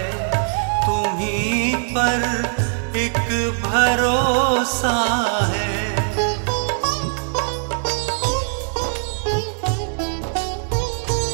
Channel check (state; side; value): silent; left; digital silence